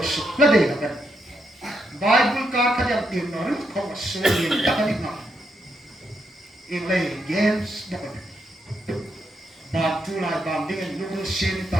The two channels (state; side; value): normal; both; correlation 0.80